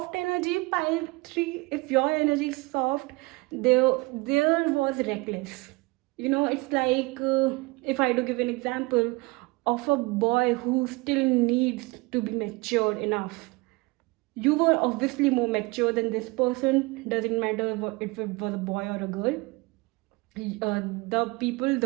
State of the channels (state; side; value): quieter; left; 25.0 dB